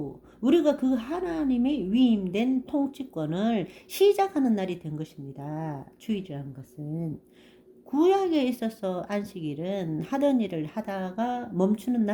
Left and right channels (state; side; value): identical; both; correlation 1.00